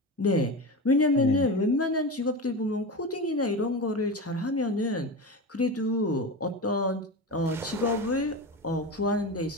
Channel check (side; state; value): both; normal; correlation 0.24